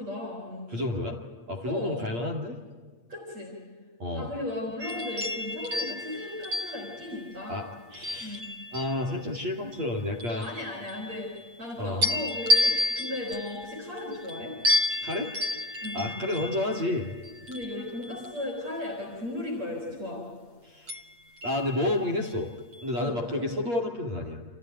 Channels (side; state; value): left; late; 8.5 ms